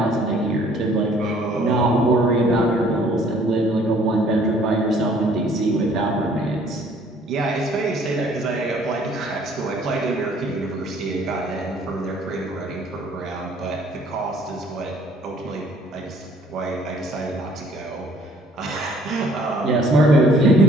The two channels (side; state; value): both; normal; correlation 0.58